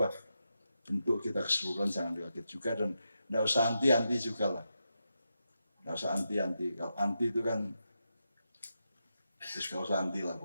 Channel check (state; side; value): inverted; both; correlation -0.86